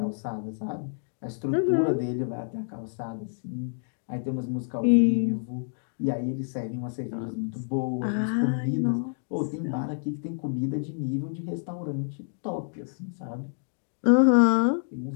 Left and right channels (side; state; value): right; silent; digital silence